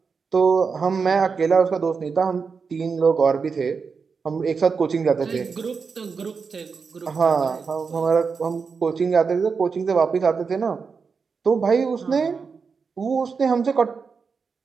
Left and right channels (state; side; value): quieter; left; 5.3 dB